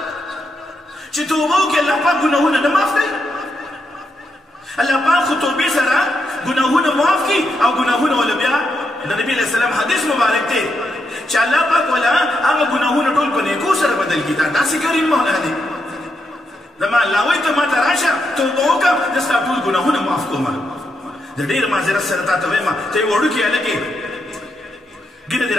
چې توبه وکړي الله پاک ګناهونه نه معاف کوي الله پاک خو توبې سره ګناهونه معاف کړي او ګناهونه وله بیا د نبي علیه السلام حدیث مبارک دی چې الله پاک وله هغه ګناهونه ټول په نیکو سره بدل کړي دا داسې کریم مولا دی زما الله وایي ته ما ته راشه توبه وکړه زه ستا ټول ګناهونه معاف کوم زه ډېر معذرت سره تا ته وایم ته یې وړوکي هلکې ګیره دې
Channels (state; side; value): normal; both; correlation 0.82